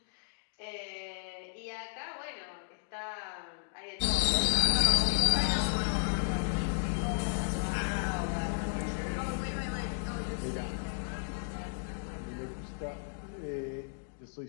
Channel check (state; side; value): silent; right; digital silence